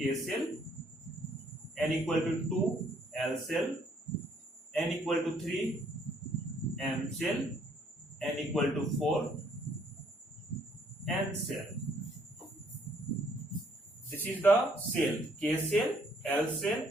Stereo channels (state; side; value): normal; both; correlation 0.66